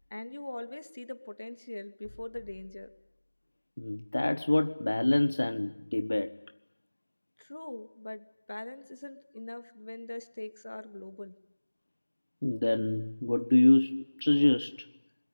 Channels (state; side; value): inverted; both; correlation -1.00